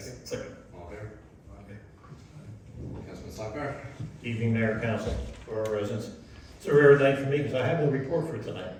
Second. All in favor? Councilman Slackbar? Evening, Mayor, Council, for our residents. It's a rare night for me because I have no report for tonight,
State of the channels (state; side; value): identical; both; correlation 1.00